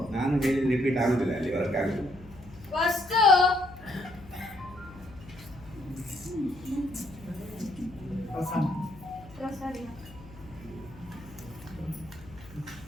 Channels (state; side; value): noise; left; hum, 19 dB below the sound